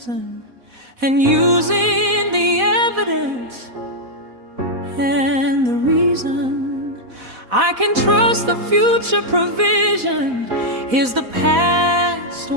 and using the evidence and the reason I can trust the future provision is the past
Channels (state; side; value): late; left; 4.0 ms